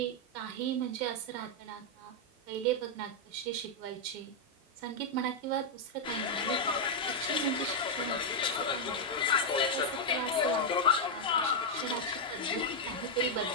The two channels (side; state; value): both; normal; correlation -0.01